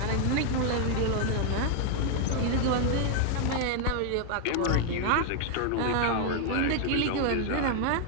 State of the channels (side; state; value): both; different; correlation 0.00